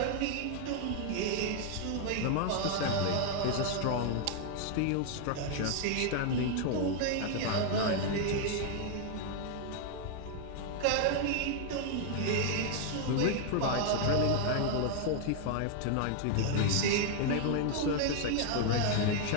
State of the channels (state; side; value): different; both; correlation 0.00